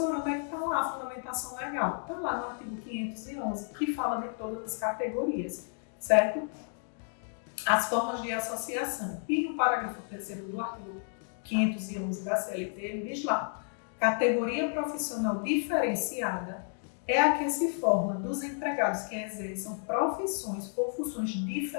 onde é que está lá a fundamentação legal? Está lá no artigo 511, que fala de todas as categorias, certo? as formas de associação. E no parágrafo 3º do artigo 511 da CLT, ele diz lá: categoria profissional diferenciada é a que se forma dos empregados que exerçam profissões ou funções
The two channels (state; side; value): silent; right; 57 dB below the other